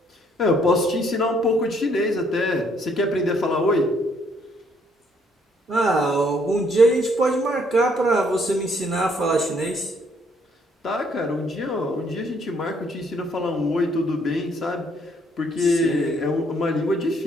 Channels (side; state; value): both; normal; correlation 0.67